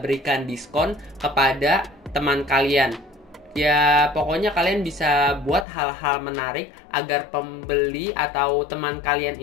berikan diskon kepada teman kalian. Ya, pokoknya kalian bisa buat hal-hal menarik agar pembeli atau teman kalian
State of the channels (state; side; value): drops out; right; at 5.7 s